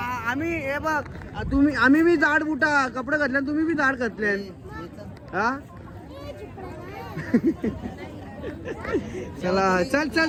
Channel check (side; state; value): both; identical; correlation 1.00